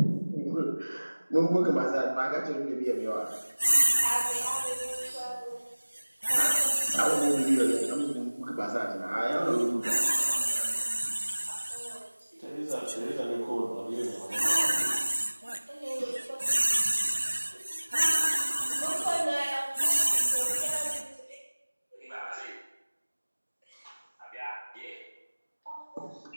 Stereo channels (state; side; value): inverted; both; correlation -1.00